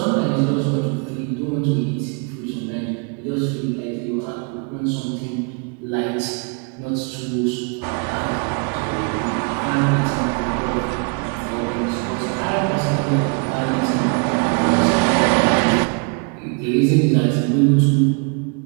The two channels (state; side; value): quieter; left; 37.5 dB